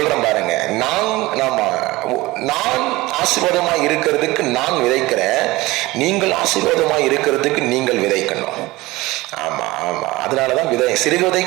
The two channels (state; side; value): quieter; left; 20.0 dB